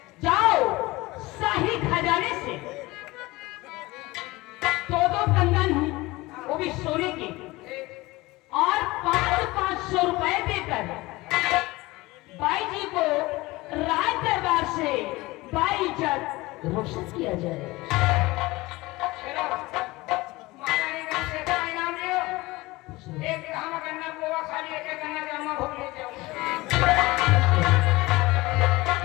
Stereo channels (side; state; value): right; quieter; 20.8 dB